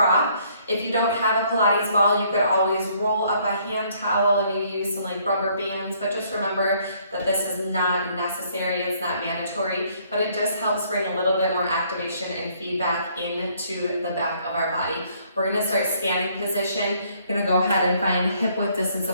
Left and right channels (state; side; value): inverted; both; correlation -0.65